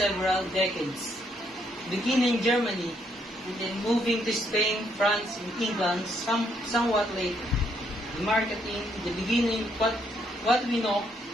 decades, beginning in Germany and then moving to Spain, France, and England somewhat later, marketing the beginning of what we now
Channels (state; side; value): normal; both; correlation 0.73